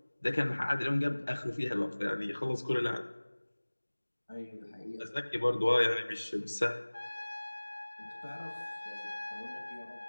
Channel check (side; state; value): both; inverted; correlation -1.00